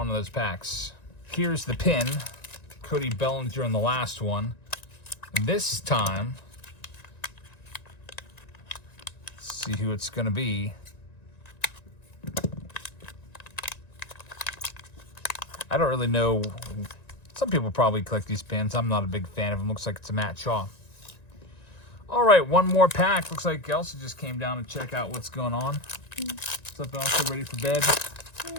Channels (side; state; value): right; late; 1.9 ms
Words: in those packs. Here's the pin. Cody Bellinger in the last one. This time, let's see who it's going to be. I don't really know. Some people probably collect these pins. I'm not a big fan of them. Looks like it's a Matt Shaw. All right, one more pack. Looks like Elsa just came down to check out what's going on. What's up, Elsa? Ready for bed?